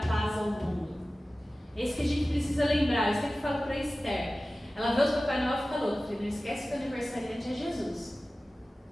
ao mundo. É isso que a gente precisa lembrar. Eu sempre falo para a Esther, ela vê os Papai Noel e fica louca, porque não esquece que o aniversariante é Jesus.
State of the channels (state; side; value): normal; both; correlation 0.96